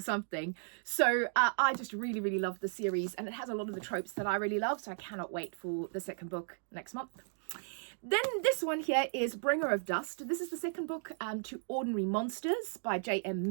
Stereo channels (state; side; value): silent; left; digital silence